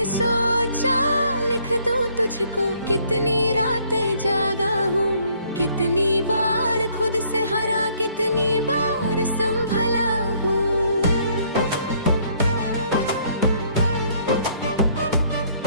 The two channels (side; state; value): both; inverted; correlation -0.64